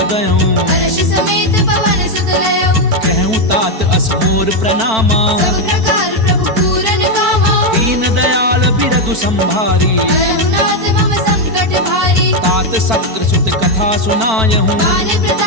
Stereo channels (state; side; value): late; left; 4.5 ms